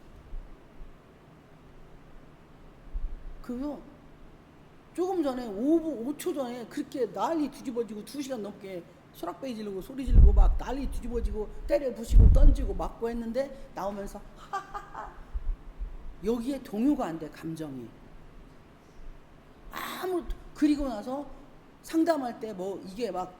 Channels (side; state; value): both; identical; correlation 1.00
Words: 그거 조금 전에 5초 전에 그렇게 난리 뒤집어지고 2시간 넘게 소락베이 지르고 소리 지르고 막 난리 뒤집어지고 때려 부시고 던지고 맞고 했는데 나오면서 하하하. 여기에 동요가 안 돼, 감정이. 그리고 나서 상담할 때 이게 막